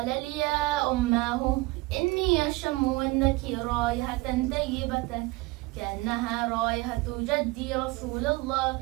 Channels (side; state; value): left; quieter; 22.5 dB